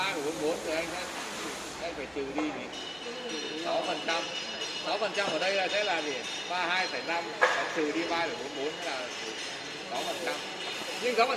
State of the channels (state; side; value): identical; both; correlation 1.00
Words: thì anh phải trừ đi thì 6%. 6% ở đây là sẽ là gì? 32,5 trừ đi 3,44 là 6%. Nhưng